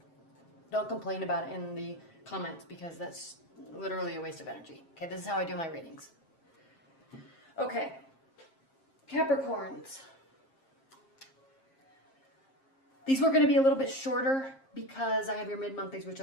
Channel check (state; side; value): late; right; 7.5 ms